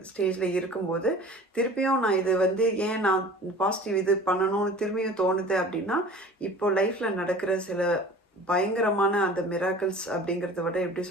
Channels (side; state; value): both; normal; correlation 0.43